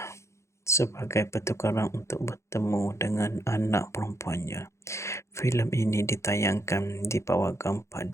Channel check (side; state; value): right; late; 0.14 ms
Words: sebagai pertukaran untuk bertemu dengan anak perempuannya. Filem ini ditayangkan di Pawagam